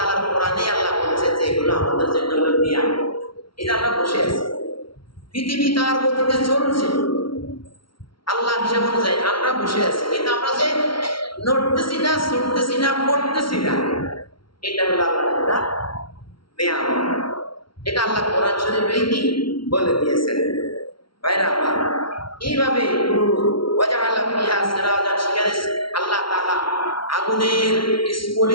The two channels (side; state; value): right; late; 0.74 ms